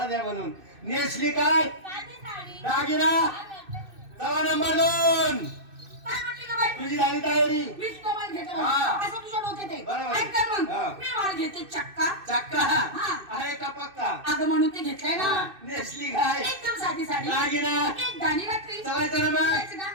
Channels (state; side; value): late; left; 2.6 ms